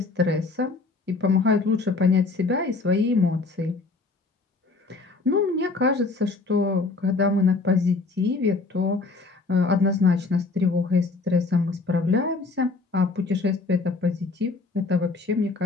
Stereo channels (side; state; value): right; quieter; 3.9 dB